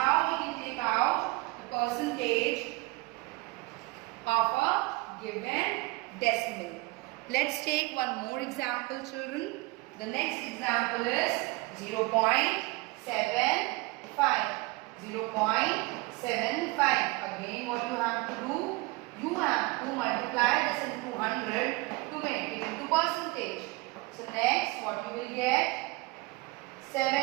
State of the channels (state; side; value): quieter; left; 23.6 dB